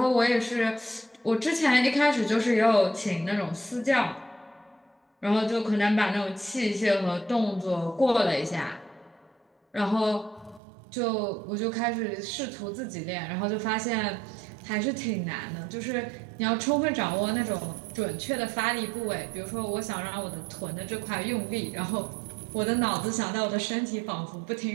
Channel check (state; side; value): drops out; left; at 10.6 s